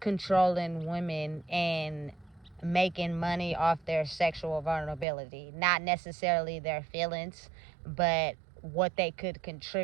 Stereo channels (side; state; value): left; drops out; at 5.1 s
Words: women and making money off their sexual vulnerability. Not necessarily their feelings, but what they could